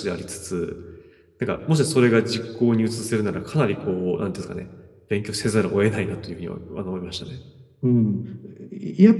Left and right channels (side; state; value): both; identical; correlation 1.00